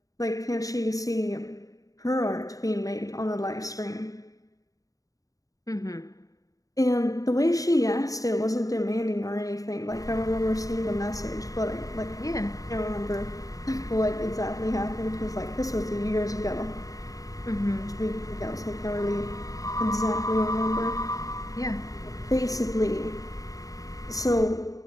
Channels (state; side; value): late; right; 0.17 ms